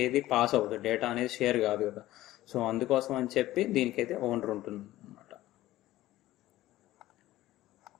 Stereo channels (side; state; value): right; quieter; 15.7 dB